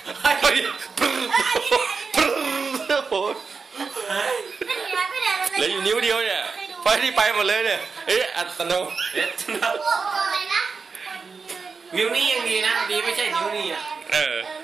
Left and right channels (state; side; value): quieter; left; 4.9 dB